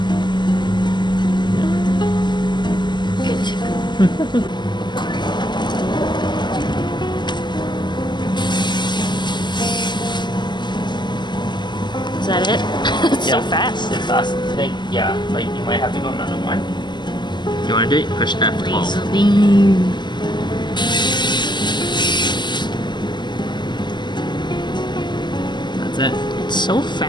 Good to go. Is that it? It's so fast. It's fast. I think, yeah, like you might have to go another one. You want to do it? Push F12. Laser beam. That's it. It's so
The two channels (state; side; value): late; right; 0.21 ms